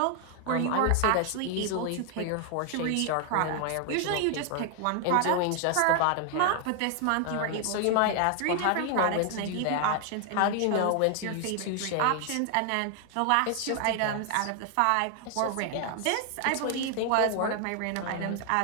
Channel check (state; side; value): different; both; correlation 0.00